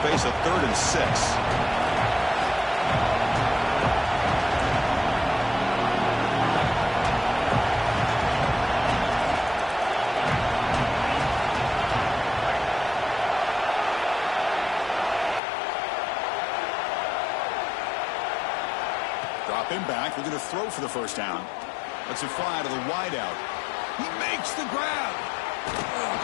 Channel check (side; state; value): right; drops out; at 15.4 s